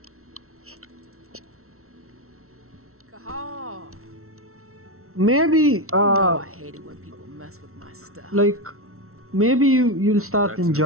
Cahal! Maybe, I hate it when people mess with my stuff. like, maybe you'll start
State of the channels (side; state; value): left; late; 0.63 ms